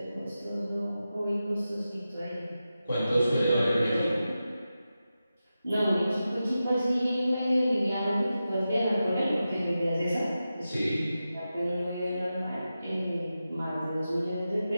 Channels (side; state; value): both; inverted; correlation -0.92